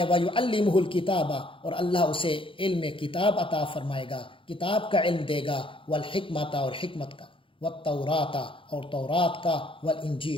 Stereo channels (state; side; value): late; right; 0.25 ms